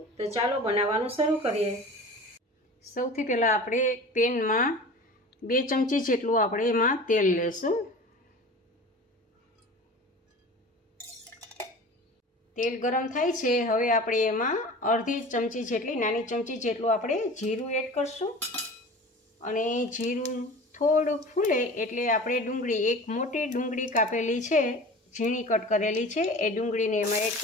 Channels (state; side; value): normal; both; correlation 0.38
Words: તો ચાલો બનાવવાનું શરૂ કરીએ। સૌથી પહેલાં આપણે પેનમાં 2 ચમચી જેટલું આપણે એમાં તેલ લેશું। તેલ ગરમ થાય છે, હવે આપણે એમાં અડધી ચમચી જેટલી નાની ચમચી જેટલું આપણે જીરું એડ કરશું અને જીરું થોડું ફૂલે એટલે આપણે ડુંગળી, એક મોટી ડુંગળી કાપેલી છે, ઝીણી કટ કરેલી છે, એ ડુંગળીને એમાં એડ